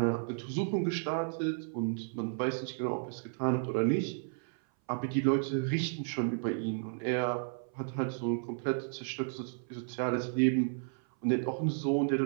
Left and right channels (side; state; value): left; silent; 56 dB below the other